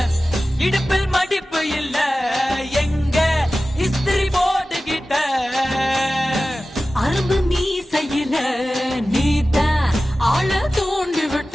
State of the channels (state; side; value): normal; both; correlation 0.95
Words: இடுப்பில் மடிப்பு இல்ல எங்க இஸ்திரி போட்டுக்கிட்ட அரும்பு மீசையில நீத்த ஆள தோண்டி